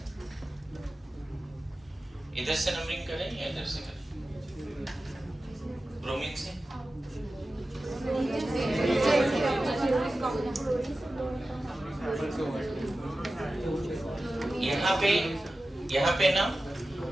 इधर से नंबरिंग करें या इधर से करें? ब्रोमीन से। यहाँ पे ना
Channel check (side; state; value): both; normal; correlation 0.95